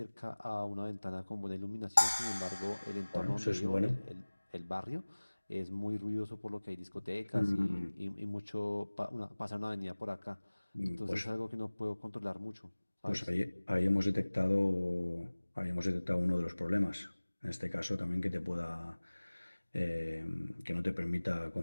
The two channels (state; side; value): inverted; both; correlation -1.00